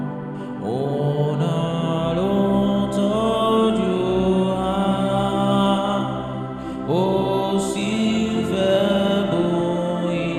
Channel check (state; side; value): identical; both; correlation 1.00